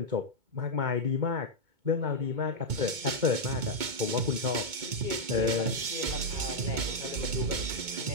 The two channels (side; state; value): left; late; 2.2 ms